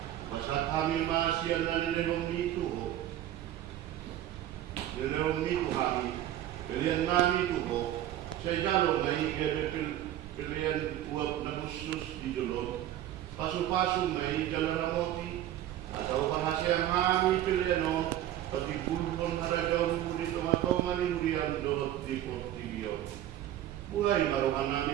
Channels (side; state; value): left; quieter; 12.6 dB